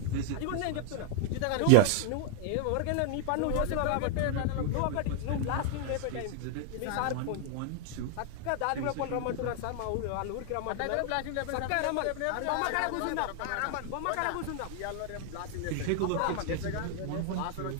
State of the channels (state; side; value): different; both; correlation 0.00